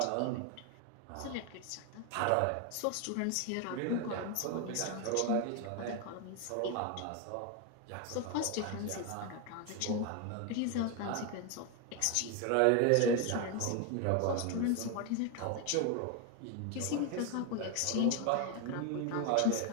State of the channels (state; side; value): different; both; correlation 0.01